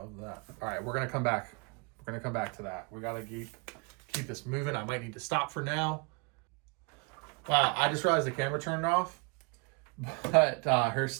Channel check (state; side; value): quieter; left; 32.1 dB